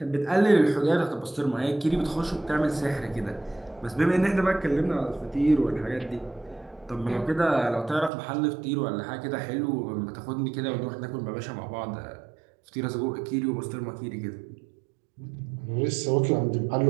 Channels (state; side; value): drops out; left; at 8.1 s